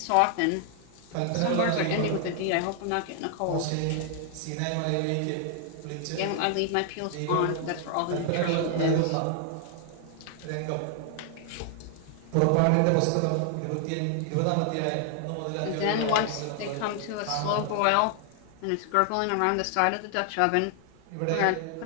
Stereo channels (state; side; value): different; both; correlation 0.00